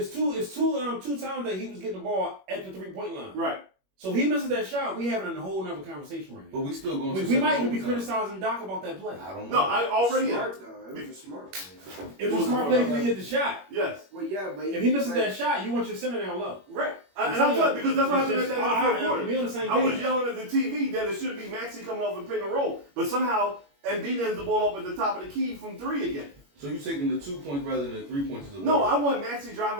that he was getting the ball at the 3-point line. Right. So if he misses that shot, we having a whole other conversation right now. But we still going. We might even be criticizing Doc about that play. I don't know. No, I already. Smart though. It was a smart play. It was a smart play because he hit the shot. Yes. Well, yeah, but if he misses that shot, you want your center down low. Right. And I'm telling because that's what happened at the end of the fourth quarter. We on the same I was yelling at the TV that it should be Maxey coming off and pick and roll, but somehow Embiid ends the ball up at the top of the key from 3 again. So you're taking the 2 points rather than the 3 points? No, I want Maxey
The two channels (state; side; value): late; left; 21 ms